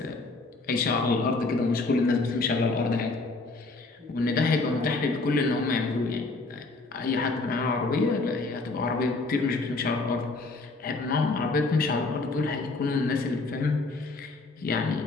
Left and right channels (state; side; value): quieter; right; 3.5 dB